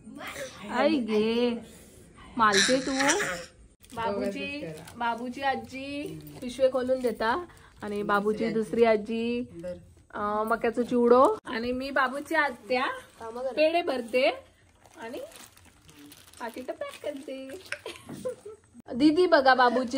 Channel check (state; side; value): identical; both; correlation 1.00